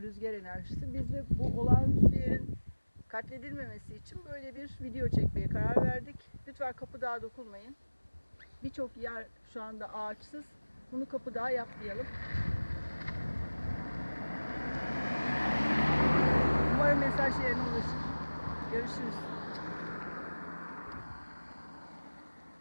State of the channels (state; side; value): inverted; both; correlation -1.00